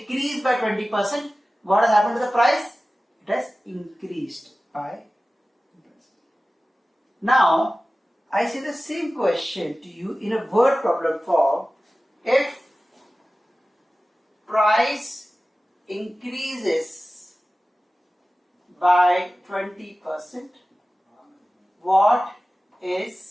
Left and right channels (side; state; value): both; normal; correlation 0.96